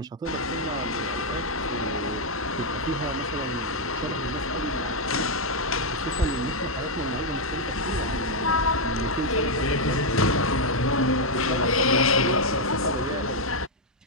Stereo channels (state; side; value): normal; both; correlation -0.01